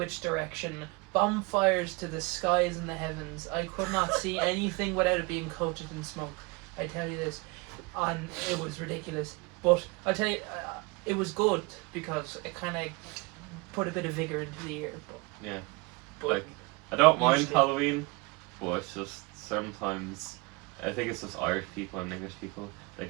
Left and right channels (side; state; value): left; quieter; 26.9 dB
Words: direction. Bonfires to the skies and the heavens. I could not see anything without it being coated in smoke. I tell you this. And it was ridiculous. But I tell you, it was good because it kind of put a bit of vigour into the year. But, Yeah. but Like, I don't mind usually- Halloween, but it's just sometimes, I think it's just Irish people and English people, they